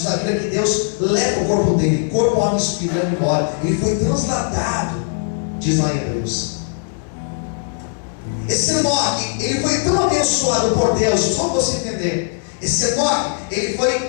a Bíblia que Deus leva o corpo dele, corpo, alma e espírito, leva embora. Ele foi transladado, diz lá em Hebreus. Esse Enoque, ele foi tão abençoado por Deus, só para você entender. Esse Enoque, ele foi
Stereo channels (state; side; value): silent; right; 59 dB below the other